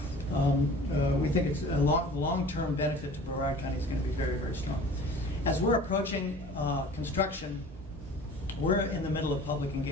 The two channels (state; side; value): normal; both; correlation 0.44